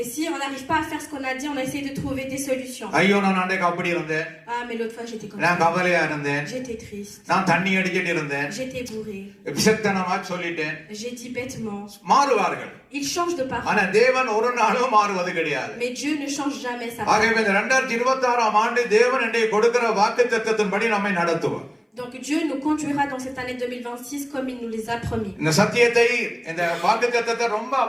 Et si on n'arrive pas à faire ce qu'on a dit, on essaie de trouver des solutions. ஐயோ, நான் அன்றைக்கு அப்படி இருந்தேன், Ah mais l'autre fois j'étais comme நான் ça. கவலையா இருந்தேன், J'étais triste. நான் தண்ணி அடிச்சிட்டு இருந்தேன், J'étais bourré. விசத்தனமா சொல்லிட்டேன். J'ai dit bêtement. மாறுவார்கள். Il change de parole. ஆனா தேவன் ஒரு நாளும் மாறுவது கிடையாது. Mais Dieu ne change jamais sa ஆகவே parole. இந்த 2026ஆம் ஆண்டு தேவன் என்னை கொடுக்கிற வாக்குத்தத்தத்தின்படி நம்மை நடத்துவார். Donc Dieu nous conduira dans cette année 2026 comme il nous les a promis. இந்த சத்தியத்தை, இந்த வாக்குத்தத்தத்தை ரொம்ப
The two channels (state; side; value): identical; both; correlation 1.00